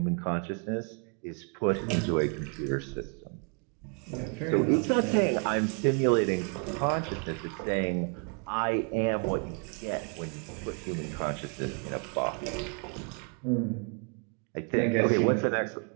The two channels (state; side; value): quieter; left; 39.3 dB